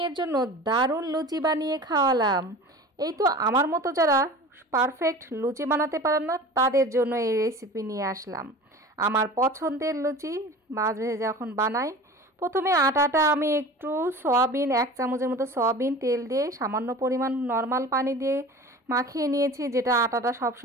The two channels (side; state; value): both; normal; correlation 0.38